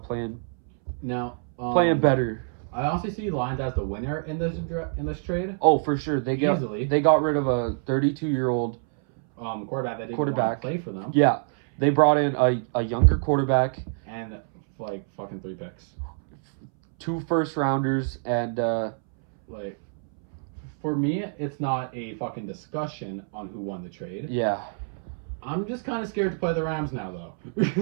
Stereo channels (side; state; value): left; silent; 61 dB below the other